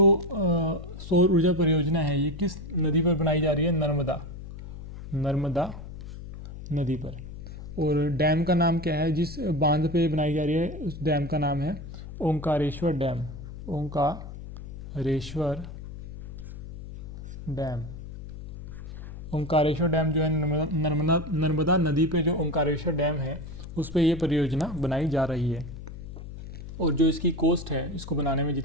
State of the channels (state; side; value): noise; left; hum, 11 dB below the sound